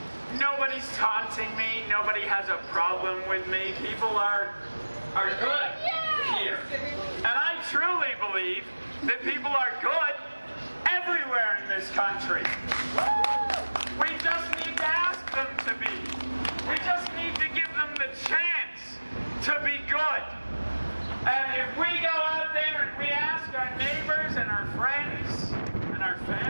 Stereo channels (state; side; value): inverted; both; correlation -1.00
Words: nobody's taunting me, nobody has a problem with me, people are good here. And I truly believe that people are good everywhere in this country. We just need to ask them to be. We just need to give them the chance to be good. And if we go out there and we ask our neighbors and our friends and our